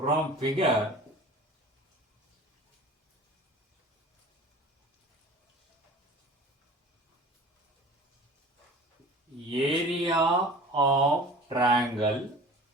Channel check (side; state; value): both; normal; correlation 0.41